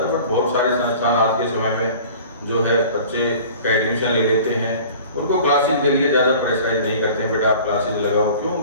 बट बहुत सारे संस्थान आज के समय में जो है बच्चे का एडमिशन ले लेते हैं, उनको क्लासेज के लिए ज़्यादा प्रेशराइज नहीं करते हैं, बेटा आप क्लासेज लगाओ। क्यों?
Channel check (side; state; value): both; inverted; correlation -0.44